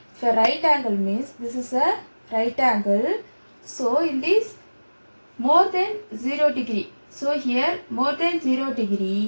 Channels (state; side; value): inverted; both; correlation -1.00